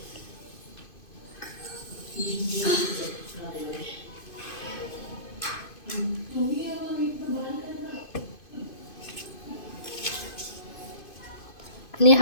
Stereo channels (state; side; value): late; right; 2.5 ms